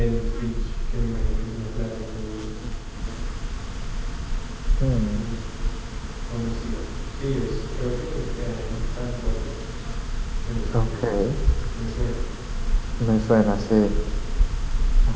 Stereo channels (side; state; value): both; identical; correlation 1.00